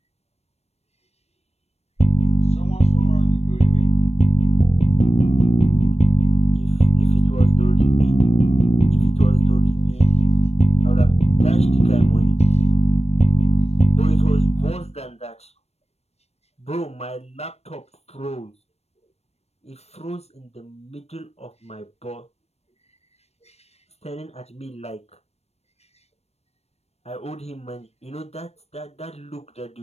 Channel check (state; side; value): late; right; 0.31 ms